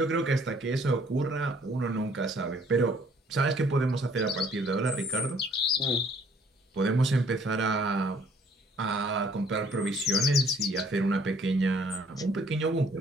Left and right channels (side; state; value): both; normal; correlation 0.60